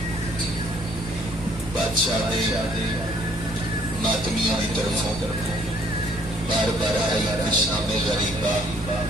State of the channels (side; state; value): both; normal; correlation 0.62